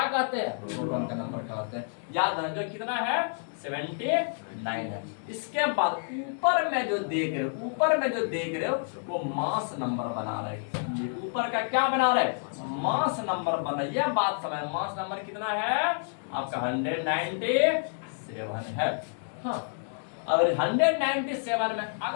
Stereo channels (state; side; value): silent; right; digital silence